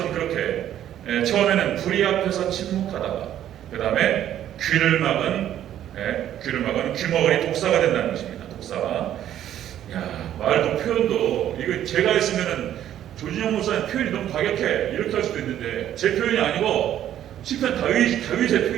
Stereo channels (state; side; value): quieter; left; 11.3 dB